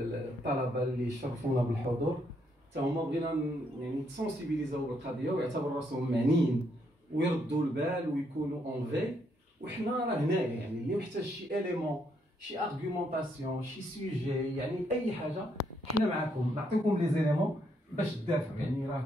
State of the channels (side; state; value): both; normal; correlation 0.74